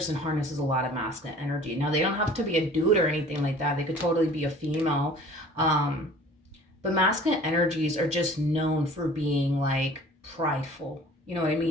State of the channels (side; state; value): both; normal; correlation 0.47